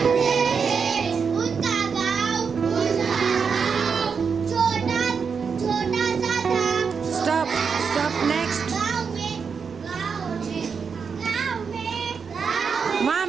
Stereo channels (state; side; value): quieter; left; 5.9 dB